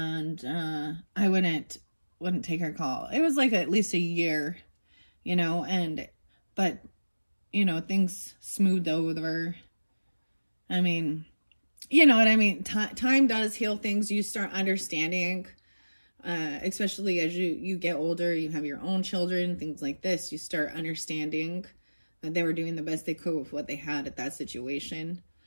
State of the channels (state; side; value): inverted; both; correlation -1.00